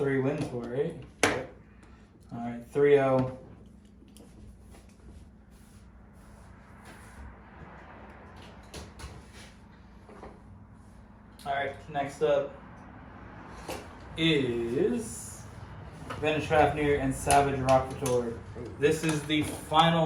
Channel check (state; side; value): identical; both; correlation 1.00